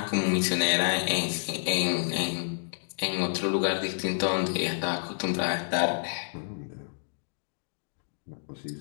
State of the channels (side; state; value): right; silent; digital silence